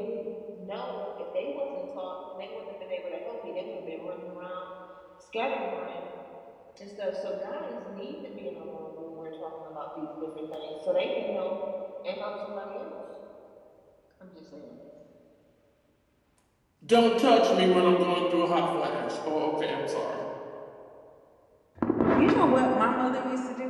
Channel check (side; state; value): both; identical; correlation 1.00